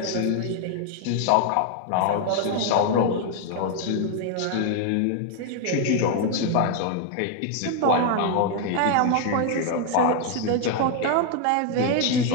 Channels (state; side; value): different; both; correlation 0.00